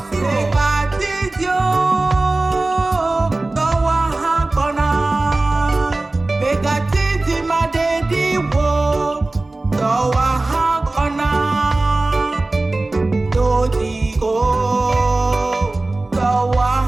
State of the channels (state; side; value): quieter; left; 3.0 dB